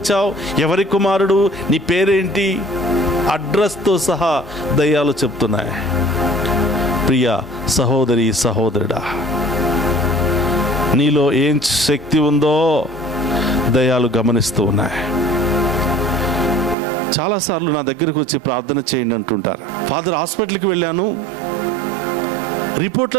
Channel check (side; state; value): left; drops out; at 16.8 s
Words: ఎవరి కుమారుడు, నీ పేరేంటి, అడ్రస్తో సహా దయ్యాలు చెప్తున్నాయి. ప్రియ సహోదరి సహోదరుడా, నీలో ఏం శక్తి ఉందో దయ్యాలు గమనిస్తూ ఉన్నాయి. చాలాసార్లు నా దగ్గరకు వచ్చి ప్రార్థన చేయండి అంటుంటారు. ఫాదర్, హాస్పిటల్కి వెళ్ళాను,